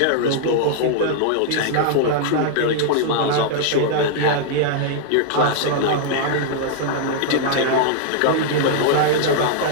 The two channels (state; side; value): different; both; correlation -0.01